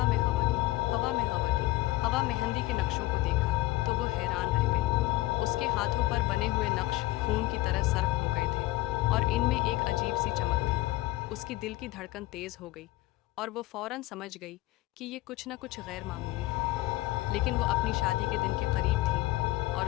में हवा की, हवा में हवा की, हवा मेहंदी के नक्शों को देखा तो वो हैरान रह गई। उसके हाथों पर बने हुए नक्श खून की तरह सर्ख हो गए थे और इनमें एक अजीब सी चमक थी। उसकी दिल की धड़कन तेज़ हो गई और वो फ़ौरन समझ गई कि ये कुछ न कुछ गैर मामूली है। लेकिन वो अपनी शादी के दिन के करीब थी और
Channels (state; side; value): quieter; right; 18.3 dB